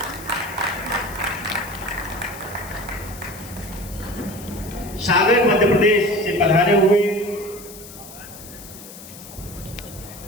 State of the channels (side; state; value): left; noise; hiss, 16 dB below the sound